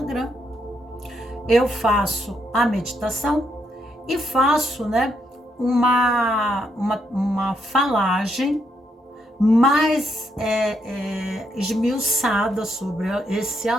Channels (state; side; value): normal; both; correlation 0.77